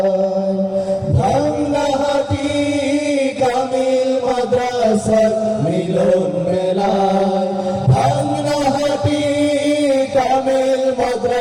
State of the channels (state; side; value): identical; both; correlation 1.00